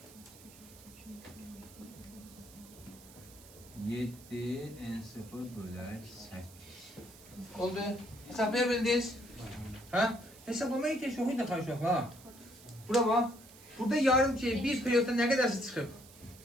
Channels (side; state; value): right; noise; hiss, 21 dB below the sound